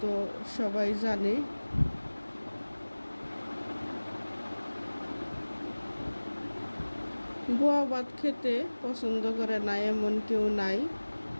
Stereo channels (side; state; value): both; inverted; correlation -1.00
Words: তো সবাই জানে। বোয়া ভাত খেতে পছন্দ করে না এমন কেউ নাই,